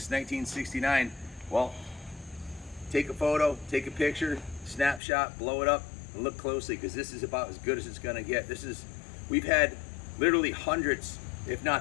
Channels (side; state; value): right; drops out; at 5.0 s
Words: 1969, well, take a photo, take a picture, snapshot, blow it up, and look closely, because this is about as good as it's gonna get. We've had literally hundreds, if